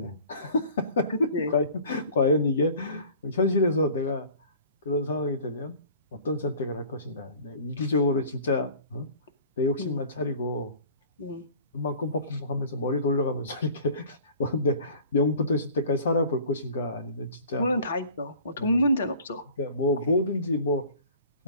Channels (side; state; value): both; inverted; correlation -0.46